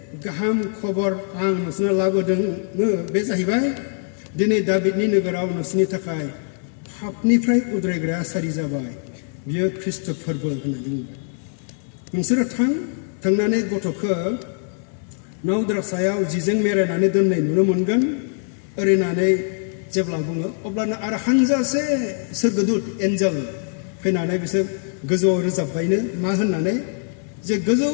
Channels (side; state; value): right; silent; 58 dB below the other